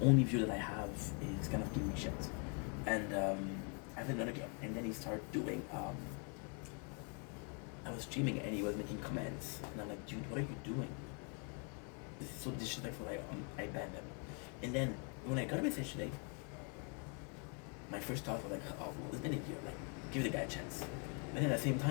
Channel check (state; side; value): quieter; right; 38.5 dB